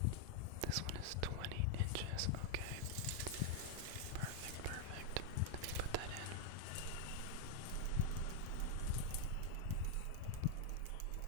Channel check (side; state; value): both; different; correlation 0.00